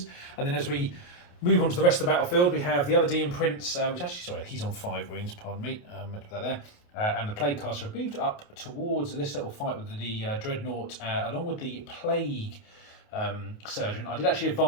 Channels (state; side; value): late; right; 28 ms